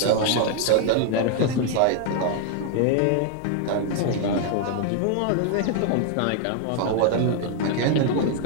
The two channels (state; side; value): different; both; correlation 0.00